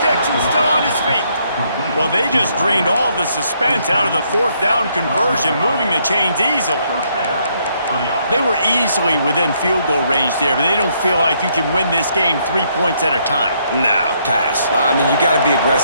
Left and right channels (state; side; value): inverted; both; correlation -0.71